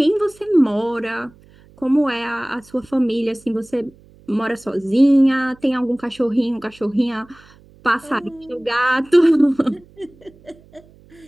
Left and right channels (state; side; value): noise; right; hum, 27 dB below the sound